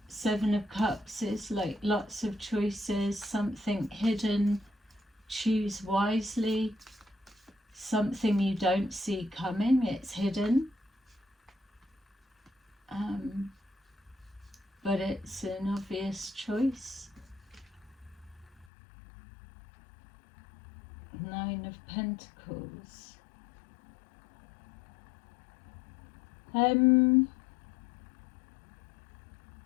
Seven of Cups is like lots of choices, something hidden. Choose wisely. Something you don't see coming, it's hidden. But it's an obvious choice. Nine of Pentacles.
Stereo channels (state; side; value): drops out; right; at 18.7 s